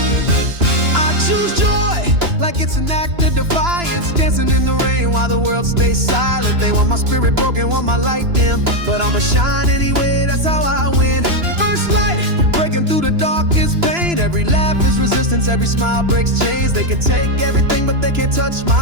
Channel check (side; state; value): left; late; 2.9 ms